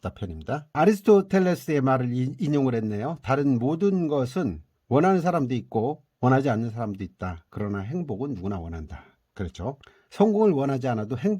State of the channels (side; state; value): both; identical; correlation 1.00